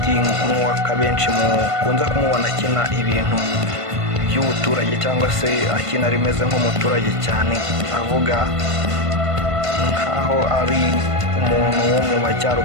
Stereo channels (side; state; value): left; late; 1.5 ms